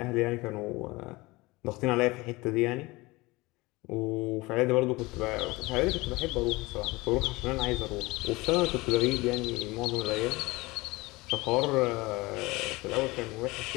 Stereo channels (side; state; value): right; quieter; 22.2 dB